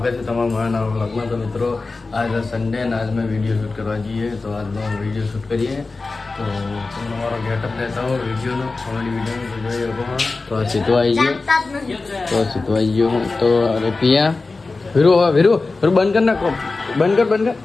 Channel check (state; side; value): quieter; right; 3.7 dB